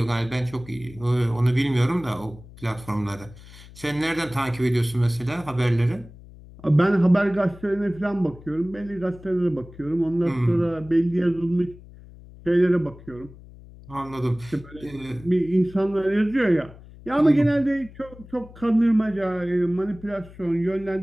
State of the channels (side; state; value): left; noise; hum, 19 dB below the sound